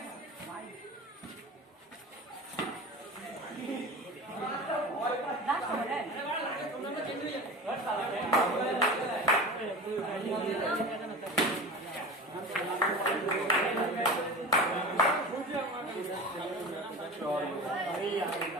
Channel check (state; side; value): normal; both; correlation 0.33